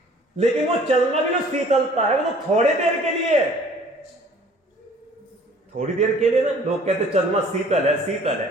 लेकिन वो चंद्रमा की जो शीतलता है वो तो थोड़ी देर के लिए है, थोड़ी देर के लिए ना। लोग कहते चंद्रमा शीतल है, शीतल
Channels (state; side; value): normal; both; correlation 0.53